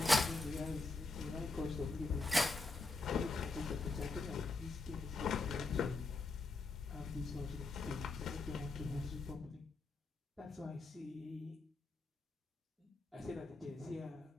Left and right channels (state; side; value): quieter; right; 3.3 dB